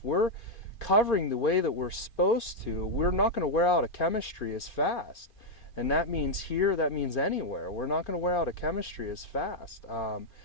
we're covering the way that we're supposed to, we're not going to wear out a chemistry as fast. And that means here, that means anywhere. We're not going to wear out a chemistry as fast.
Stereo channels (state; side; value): late; right; 2.5 ms